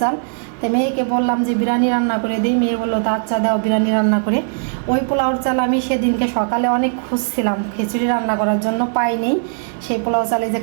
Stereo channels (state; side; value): silent; left; digital silence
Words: চাল। তো মেয়েকে বললাম যে বিরিয়ানি রান্না করে দিই, মেয়ে বললো তা আচ্ছা দাও বিরিয়ানি রান্না করে। ওই পোলাওর চাল আমি সেদিনকে সকালে অনেক খুঁজছিলাম খিচুড়ি রান্না করার জন্য, পাইনি। সেই পোলাও চালে যে